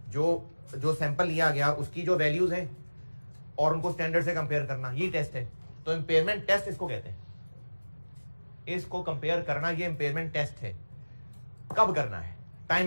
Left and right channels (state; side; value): inverted; both; correlation -1.00